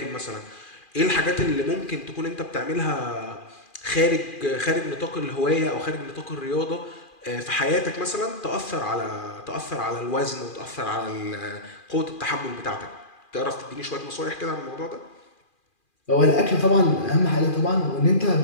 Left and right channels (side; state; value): right; late; 2.4 ms